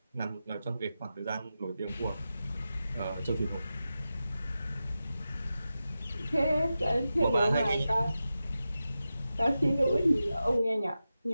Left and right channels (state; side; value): inverted; both; correlation -0.92